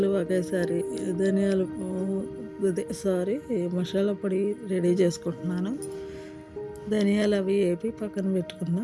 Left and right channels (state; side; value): identical; both; correlation 1.00